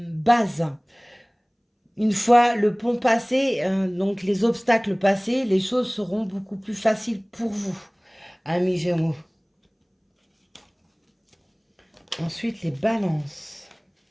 bases. Une fois le pont passé, donc les obstacles passés, les choses seront beaucoup plus faciles pour vous, amis Gémeaux. Ensuite, les balances.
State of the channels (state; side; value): identical; both; correlation 1.00